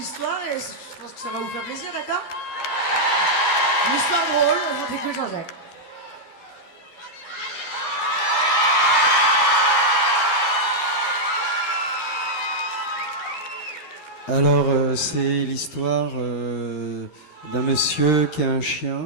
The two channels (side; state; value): right; late; 13 ms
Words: et je pense que ça va vous faire plaisir, d'accord? Une histoire drôle, on t'écoute Jean-Jacques. Alors, c'est l'histoire d'un monsieur qui a un